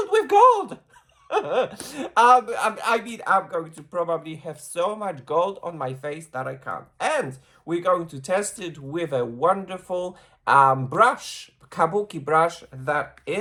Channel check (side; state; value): both; identical; correlation 1.00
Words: with gold. I mean, I'm going to probably have so much gold on my face that I can't. And we're going to test it with a wonderful brush, kabuki brush that